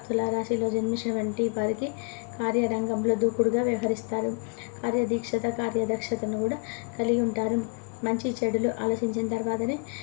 తులారాశిలో జన్మించినటువంటి వారికి కార్యరంగంలో దూకుడుగా వ్యవహరిస్తారు. కార్యదీక్షత, కార్యదక్షతను కూడా కలిగి ఉంటారు. మంచి చెడులు ఆలోచించిన తర్వాతనే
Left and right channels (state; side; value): quieter; right; 37.5 dB